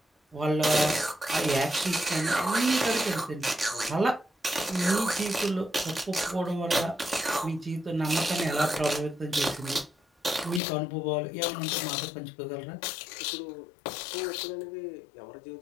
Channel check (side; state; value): right; drops out; at 10.6 s